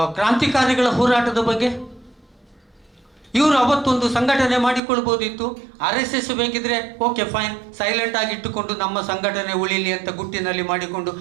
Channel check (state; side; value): drops out; left; at 4.8 s